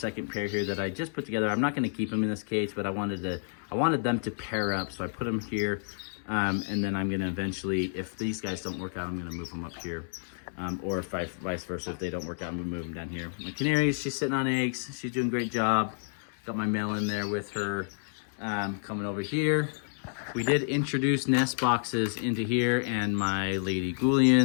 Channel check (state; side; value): silent; right; digital silence